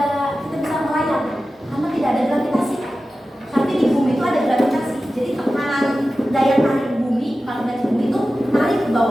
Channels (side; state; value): both; normal; correlation 0.94